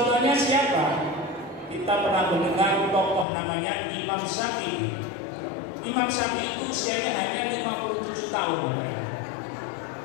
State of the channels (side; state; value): right; drops out; at 3.2 s